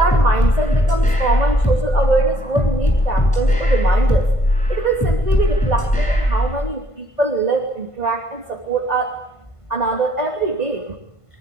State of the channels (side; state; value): right; late; 1.5 ms